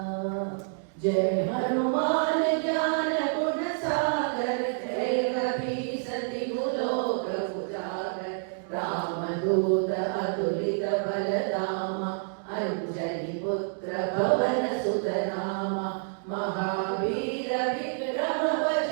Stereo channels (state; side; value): silent; left; digital silence